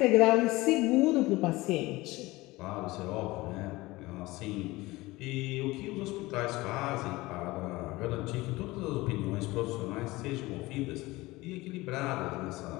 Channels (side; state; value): right; quieter; 20.3 dB